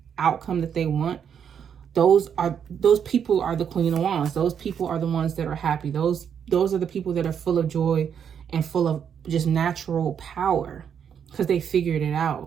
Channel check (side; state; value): left; quieter; 7.9 dB